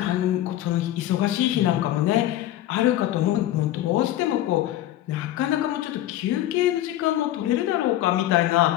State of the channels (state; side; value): quieter; right; 13.5 dB